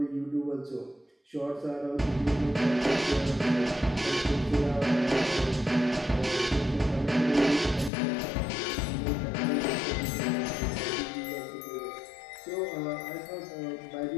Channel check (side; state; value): right; drops out; at 7.9 s